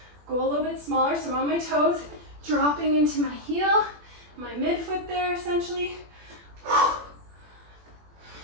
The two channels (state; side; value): late; left; 21 ms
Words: go a little bit smaller. So I'm on my toes, dropping into my heel, my midfoot there essentially.